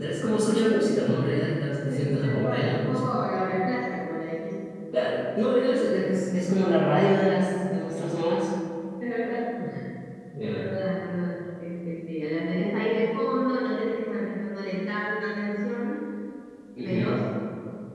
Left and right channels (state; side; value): identical; both; correlation 1.00